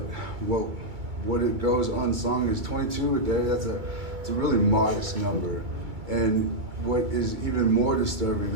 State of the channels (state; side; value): late; left; 2.3 ms